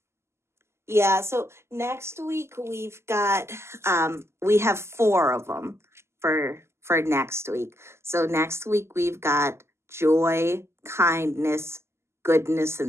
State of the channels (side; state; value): left; late; 0.13 ms